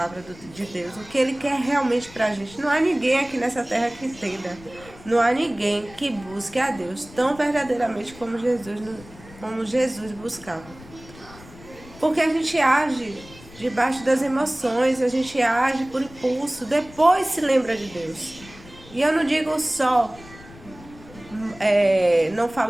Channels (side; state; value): left; noise; rumble, 20 dB below the sound